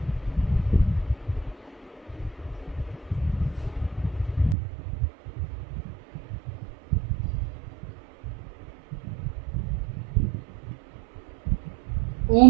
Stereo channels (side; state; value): left; drops out; at 4.5 s